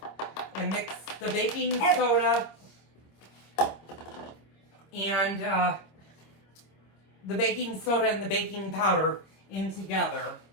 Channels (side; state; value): right; late; 26 ms